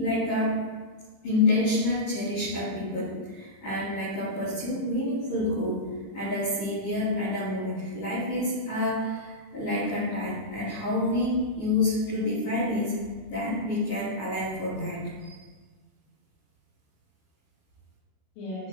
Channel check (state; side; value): late; right; 26 ms